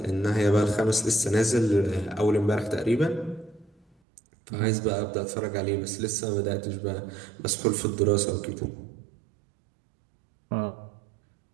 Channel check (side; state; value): left; drops out; at 3.9 s